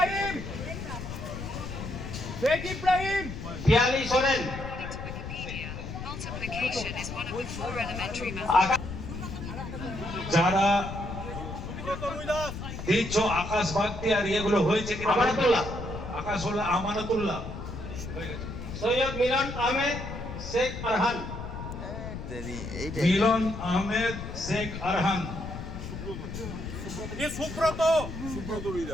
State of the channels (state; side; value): noise; left; rumble, 8 dB below the sound